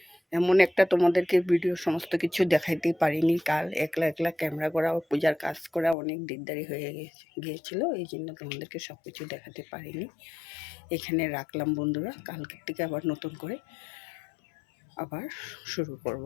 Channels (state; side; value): drops out; right; at 6.0 s